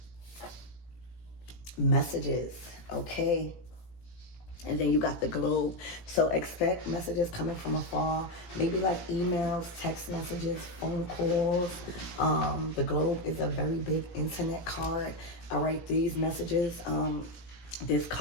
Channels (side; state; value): right; late; 17 ms